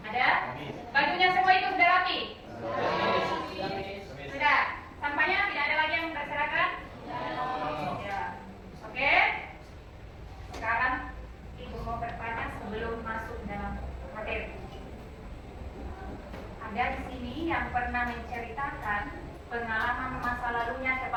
Ada? Bajunya semua itu sudah rapi? Sudah. Sampahnya tidak ada lagi yang berserakan? Ya. Oke. Sekarang Ibu mau bertanya sebelum masuk dalam materi. Ada di sini yang pernah menceritakan pengalaman masa lalunya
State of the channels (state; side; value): identical; both; correlation 1.00